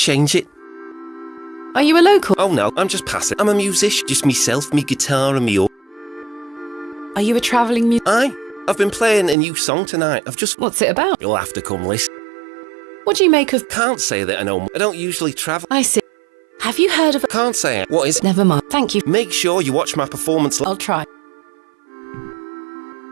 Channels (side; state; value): left; drops out; at 9.3 s